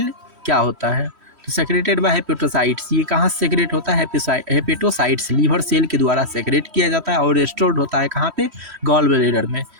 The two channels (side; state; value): left; late; 3.1 ms